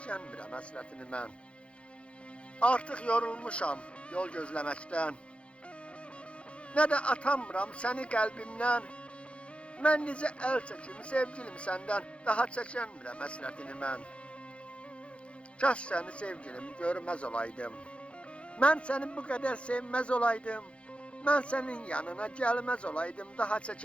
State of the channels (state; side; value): late; right; 0.060 ms